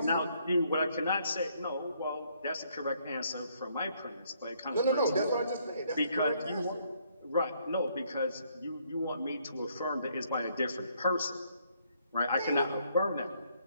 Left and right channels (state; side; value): inverted; both; correlation -0.69